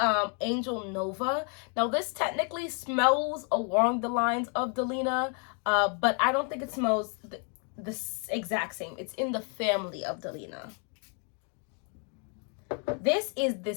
Angel Nova. Now, this technically smells along the lines of Delina, but I don't think it smells the exact same. It's in the family of Delina. This is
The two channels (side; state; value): right; quieter; 39.5 dB